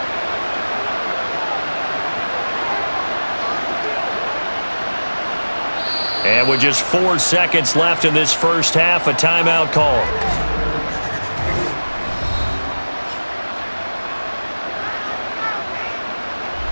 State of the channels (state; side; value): inverted; both; correlation -1.00